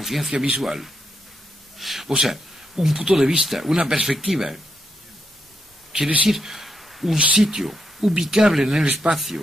visual, o sea, un punto de vista, una perspectiva, quiere decir un sitio ubicable en el espacio,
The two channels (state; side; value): normal; both; correlation 0.81